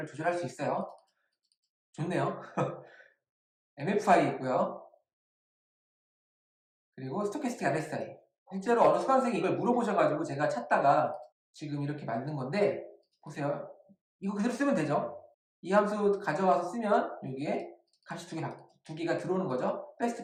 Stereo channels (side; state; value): both; identical; correlation 1.00